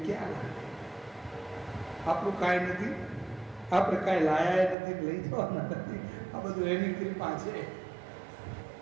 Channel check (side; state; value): left; drops out; at 4.8 s